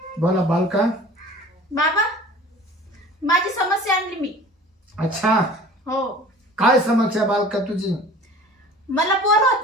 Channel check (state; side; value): normal; both; correlation 0.44